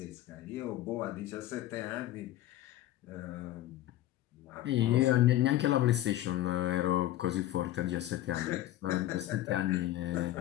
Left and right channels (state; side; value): quieter; right; 14.2 dB